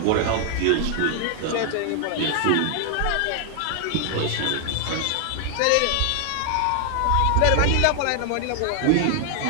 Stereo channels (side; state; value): both; different; correlation 0.00